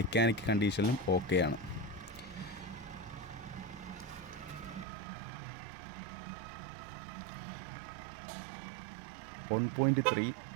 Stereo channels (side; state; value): left; drops out; at 4.9 s